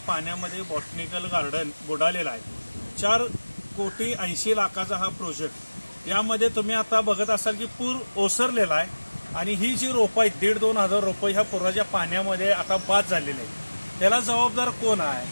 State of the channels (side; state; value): both; inverted; correlation -1.00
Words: बॉटनिकल गार्डन बुडालेला आहे। 4,80,00,000 हा प्रोजेक्ट। यामध्ये तुम्ही आता बघत असाल की पूर ओसरलेला आहे आणि ही जी रोपं आहेत 1,500-2,000 हजार रोपं ह्या पुराच्या पाण्यामध्ये आता बाद झालेले आहेत। त्याला जबाबदार कोण आहे?